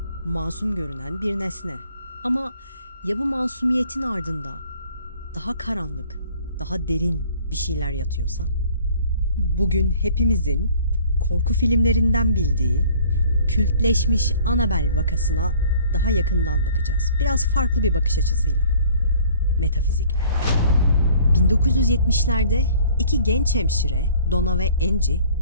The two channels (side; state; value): both; inverted; correlation -0.54